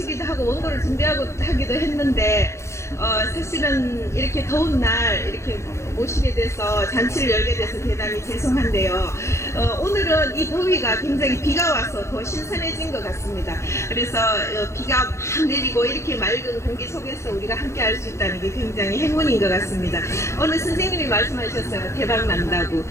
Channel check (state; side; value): late; right; 0.14 ms